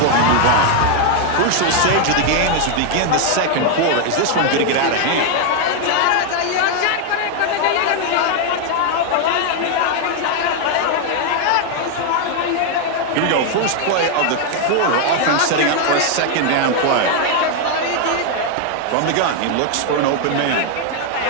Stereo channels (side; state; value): both; different; correlation 0.00